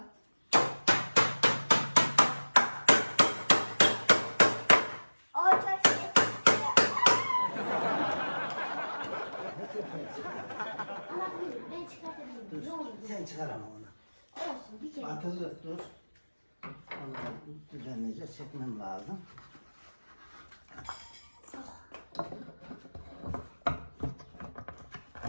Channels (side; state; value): both; inverted; correlation -1.00